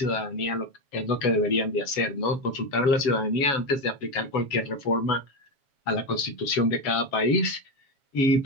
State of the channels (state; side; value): late; right; 7.3 ms